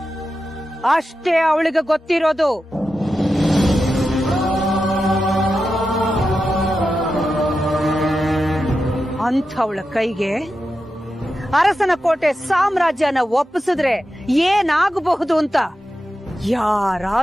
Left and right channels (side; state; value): both; normal; correlation 0.90